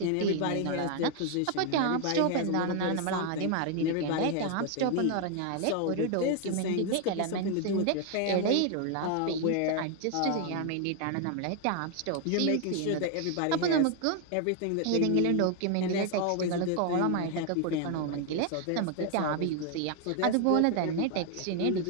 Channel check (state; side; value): different; both; correlation 0.00